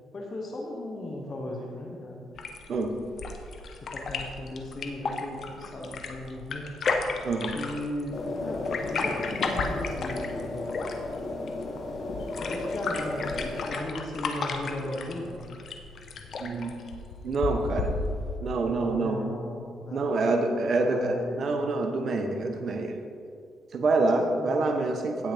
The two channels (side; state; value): both; normal; correlation 0.77